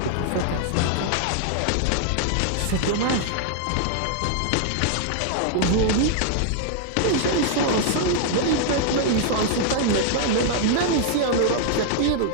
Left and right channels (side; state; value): both; different; correlation 0.00